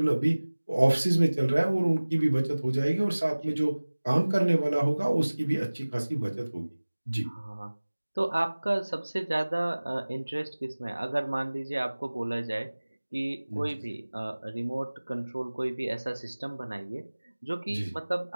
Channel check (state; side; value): inverted; both; correlation -1.00